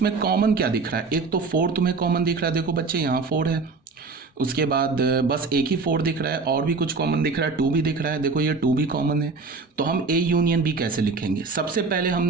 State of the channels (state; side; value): quieter; left; 4.3 dB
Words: कॉमन क्या दिख रहा है, एक तो 4 तुम्हें कॉमन दिख रहा है, देखो बच्चे यहाँ 4 है, उसके बाद बस एक ही 4 दिख रहा है, और भी कुछ कॉमन दिख रहा है, 2 भी दिख रहा है, देखो ये 2 भी कॉमन है। तो हम ए यूनियन बी कैसे लिखेंगे, सबसे पहले